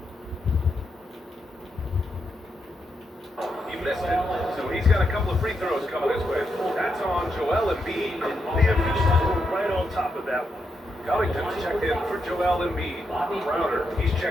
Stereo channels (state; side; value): normal; both; correlation 0.82